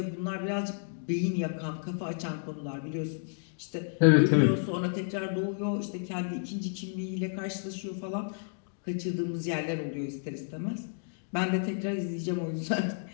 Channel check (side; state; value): right; silent; digital silence